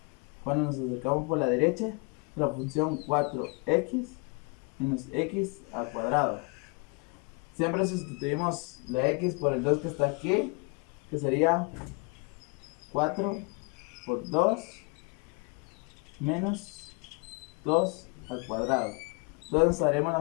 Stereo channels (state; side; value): quieter; right; 33.0 dB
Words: cuando nos acercamos por la derecha, la función 4x menos x al cuadrado. Siempre sustituimos la x por el 2 que está aquí, que sería 4 por 2 menos 2 al cuadrado. Entonces haremos la